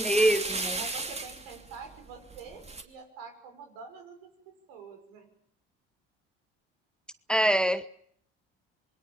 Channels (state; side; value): normal; both; correlation 0.76